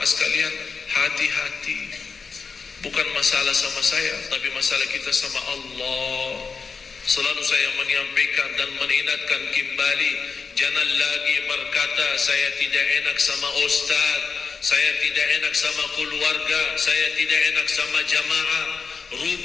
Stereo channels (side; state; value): right; quieter; 5.2 dB